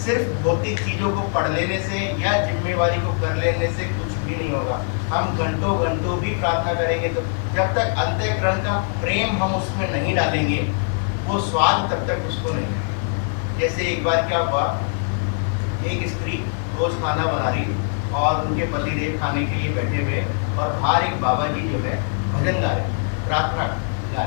सिर्फ भौतिक चीज़ों को पढ़ लेने से या जिम्मेवारी को कर लेने से कुछ भी नहीं होगा। हम घंटों घंटों भी प्रार्थना करेंगे तो जब तक अंतःकरण का प्रेम हम उसमें नहीं डालेंगे वो स्वाद तब तक उसको नहीं है। जैसे एक बार क्या हुआ, एक स्त्री रोज खाना बना रही और उनके पतिदेव खाने के लिए बैठे हुए और बाहर एक बाबा जी जो है भजन गा रहे, प्रार्थना गा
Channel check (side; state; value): right; silent; 64 dB below the other